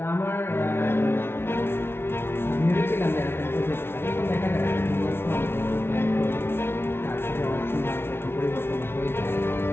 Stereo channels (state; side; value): late; right; 0.12 ms